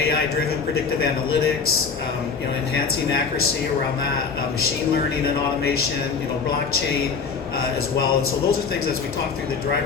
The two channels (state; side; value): quieter; right; 5.4 dB